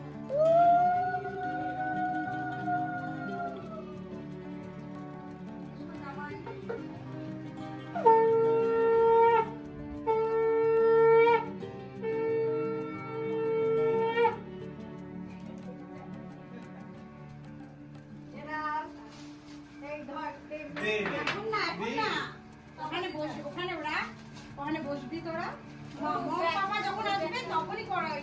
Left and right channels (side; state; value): both; identical; correlation 1.00